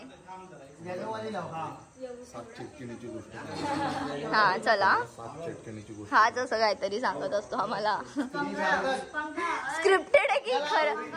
सात चिटकिणीची गोष्ट. हा चला सात चिटकिणीची गोष्ट. हाच असं काहीतरी सांगत असतो आम्हाला. स्क्रिप्टेड आहे की खरं?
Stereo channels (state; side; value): identical; both; correlation 1.00